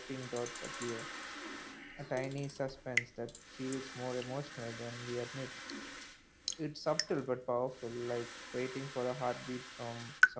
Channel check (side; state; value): both; identical; correlation 1.00